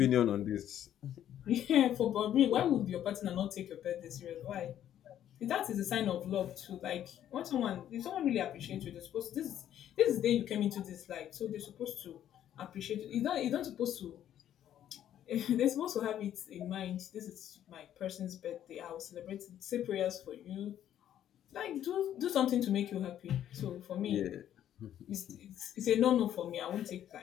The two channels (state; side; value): quieter; right; 11.0 dB